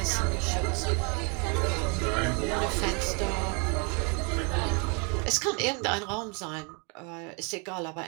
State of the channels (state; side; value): quieter; left; 34.1 dB